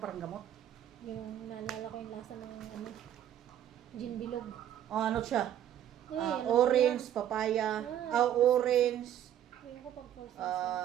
parang gamot. Yung naalala ko yung lasa ng ano, gin bilog. Oh, ano siya? Ano Orange, yan? papaya, Ah, orange, Ayun ko pag first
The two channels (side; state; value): left; quieter; 10.8 dB